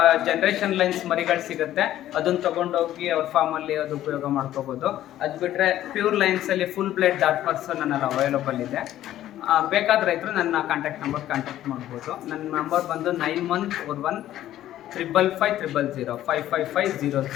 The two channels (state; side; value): quieter; right; 13.0 dB